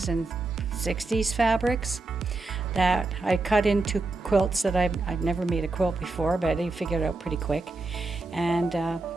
and 60s fabrics that I cut into quilts that I've never made a quilt before, but I figured it out pretty quick. And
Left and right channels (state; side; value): quieter; left; 3.3 dB